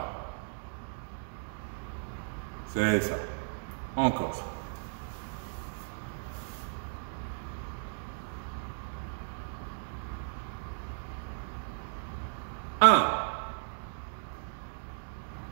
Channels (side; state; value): left; silent; digital silence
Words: C'est ça. Encore. 1.